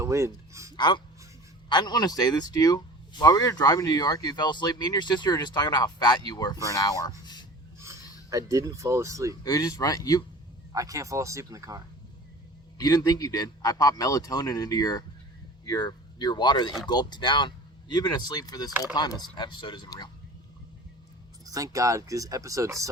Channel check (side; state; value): both; normal; correlation 0.40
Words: wind. I didn't want to say this to you. While we were driving to New York, you fell asleep. Me and your sister were just talking about how fat you were for an hour. I didn't fall asleep. It was just right. I can't fall asleep in the car. You didn't think you did. I popped melatonin into your water that you gulped down. You've been asleep for this whole time. This episode isn't real. Thank God, because this episode